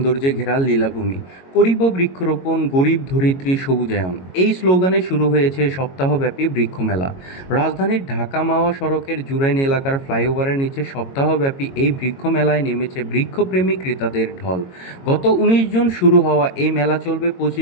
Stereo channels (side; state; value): right; late; 22 ms